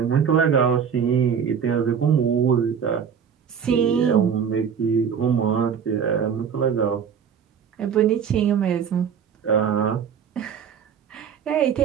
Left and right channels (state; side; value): quieter; left; 7.4 dB